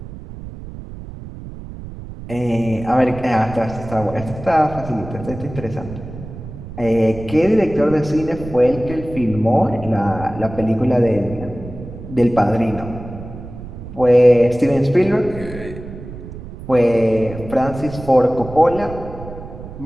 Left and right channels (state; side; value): noise; right; rumble, 12 dB below the sound